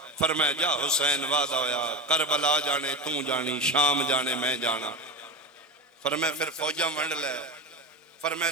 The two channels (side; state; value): both; normal; correlation 0.21